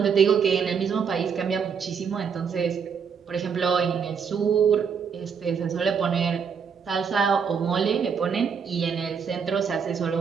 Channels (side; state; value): left; quieter; 6.5 dB